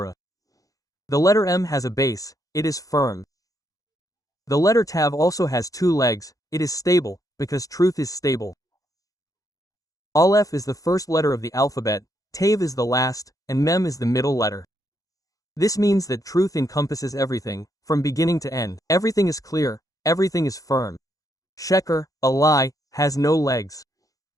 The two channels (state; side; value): late; right; 0.17 ms